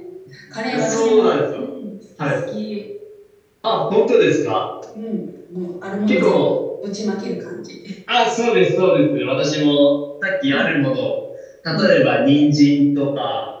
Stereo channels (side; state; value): both; identical; correlation 1.00